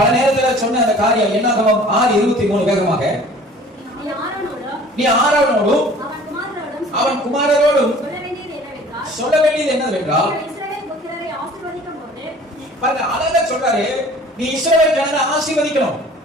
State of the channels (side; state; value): both; normal; correlation 0.48